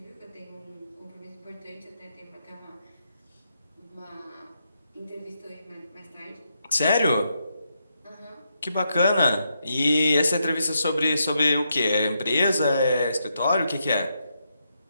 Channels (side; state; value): both; inverted; correlation -0.81